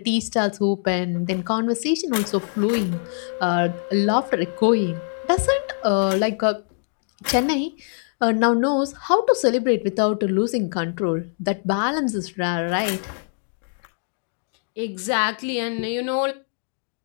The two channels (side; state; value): right; silent; digital silence